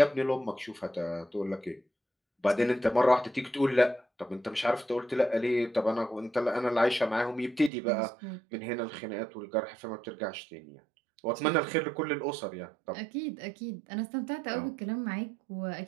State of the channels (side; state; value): left; drops out; at 7.7 s